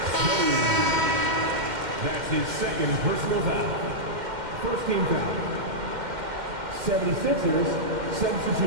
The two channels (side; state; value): left; late; 2.1 ms